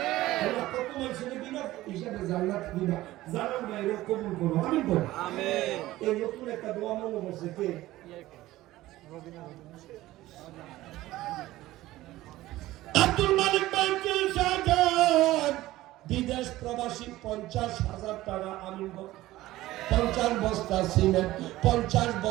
কত মানুষের বিনা হিসাবে জান্নাত দিবা জানার বাইরে কবুল করো আমিন বল আমিন এই নতুন একটা দোয়া মনে বসে কে আব্দুল মালিক বাইতুল শাহাদাত বিদেশ প্রবাসী ৫০,০০০ টাকা আমিন ৫০ বস্তা সিমেন্ট ৫০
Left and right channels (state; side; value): quieter; left; 16.5 dB